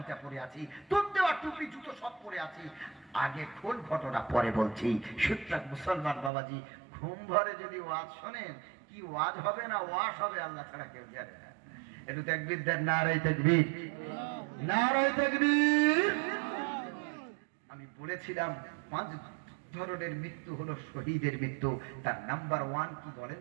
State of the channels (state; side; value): drops out; left; at 6.3 s